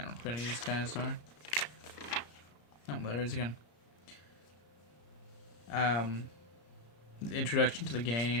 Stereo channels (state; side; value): late; right; 34 ms